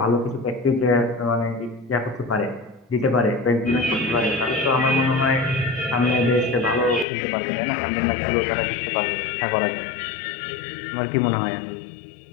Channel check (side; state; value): right; drops out; at 7.1 s